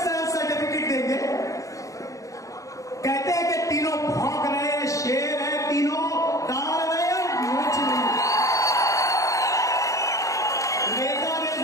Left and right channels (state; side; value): late; right; 0.16 ms